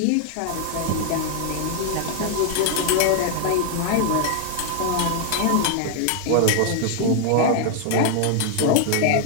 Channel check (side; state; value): both; different; correlation 0.00